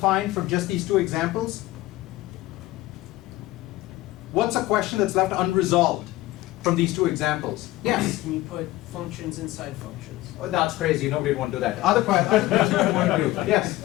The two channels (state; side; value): quieter; right; 17.3 dB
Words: from just these 2 examples? What's a question that's left unresolved from these 2 examples? Yes? Can you put functions inside functions? Oh, that's crazy. Nobody would want to do that. Other questions you want to do? Yes?